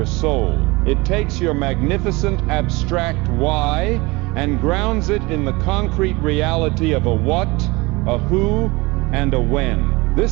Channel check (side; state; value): left; quieter; 23.7 dB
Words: soul. It takes your magnificent abstract why and grounds it in the concrete reality of a what, a who, and a when.